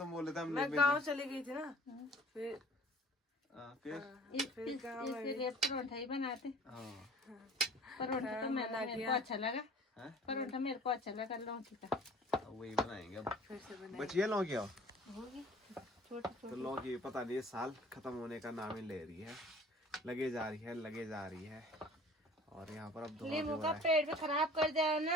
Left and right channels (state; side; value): normal; both; correlation 0.49